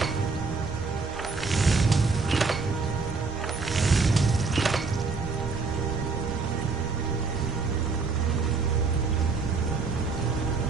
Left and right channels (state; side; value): quieter; left; 4.4 dB